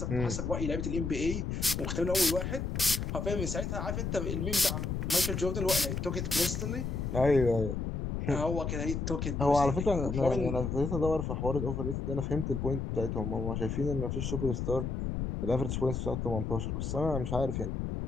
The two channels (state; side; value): noise; left; rumble, 2 dB below the sound